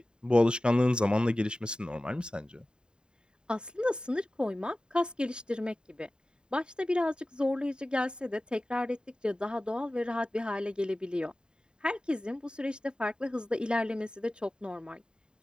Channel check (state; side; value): late; left; 0.049 ms